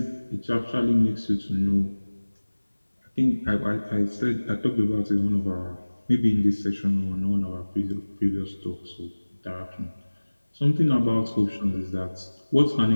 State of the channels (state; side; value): inverted; both; correlation -1.00